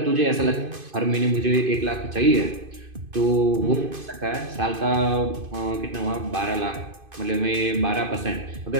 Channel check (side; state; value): left; late; 2.5 ms